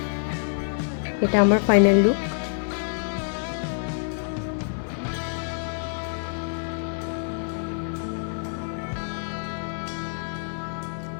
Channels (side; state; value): right; silent; 61 dB below the other